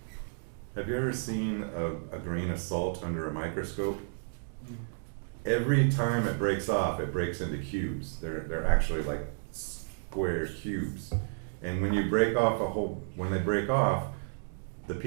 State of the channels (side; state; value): left; silent; digital silence